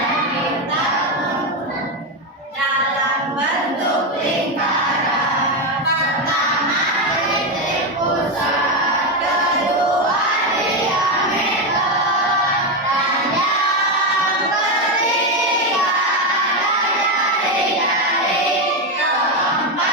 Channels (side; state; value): both; normal; correlation 0.10